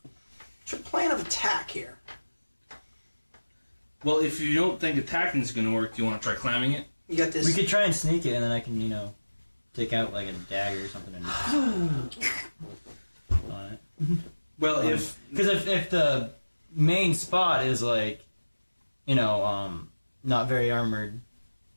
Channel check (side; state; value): both; inverted; correlation -1.00